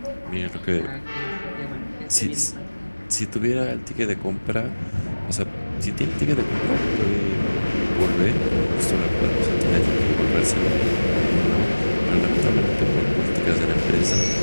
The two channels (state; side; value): inverted; both; correlation -1.00